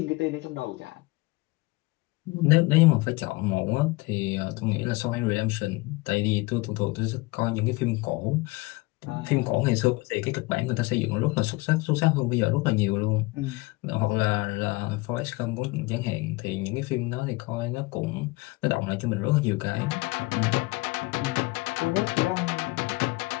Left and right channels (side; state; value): right; quieter; 23.5 dB